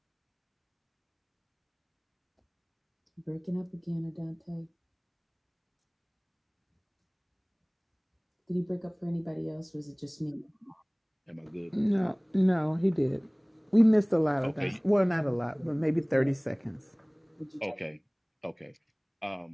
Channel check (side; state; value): both; identical; correlation 1.00